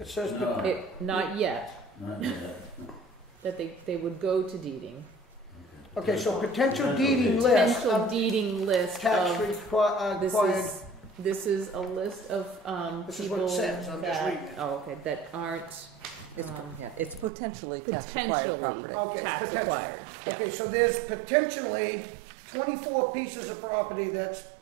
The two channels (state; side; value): drops out; left; at 17.3 s